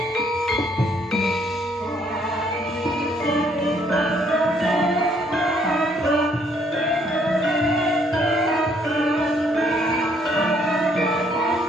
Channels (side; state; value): both; normal; correlation 0.67